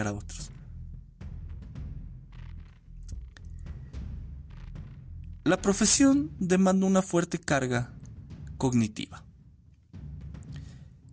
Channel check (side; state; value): both; identical; correlation 1.00